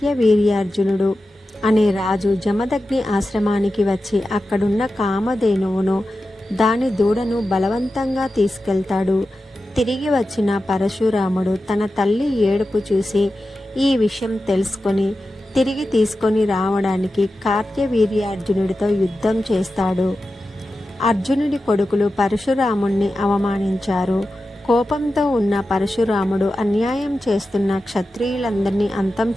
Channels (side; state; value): both; normal; correlation 0.92